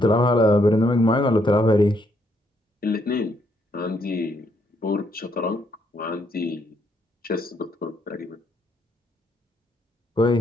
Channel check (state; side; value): normal; both; correlation 0.73